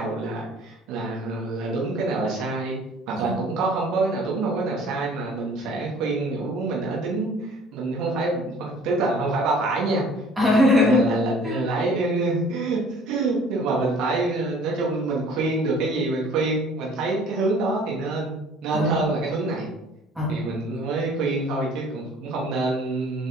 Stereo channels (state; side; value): normal; both; correlation 0.52